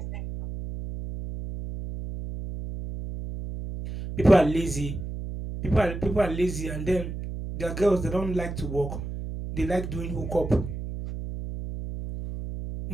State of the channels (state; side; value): noise; right; hum, 7 dB below the sound